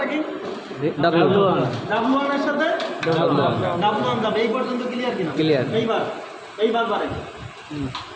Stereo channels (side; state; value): both; identical; correlation 1.00